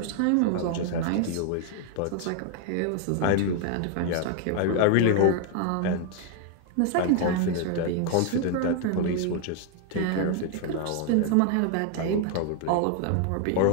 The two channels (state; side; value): different; both; correlation 0.00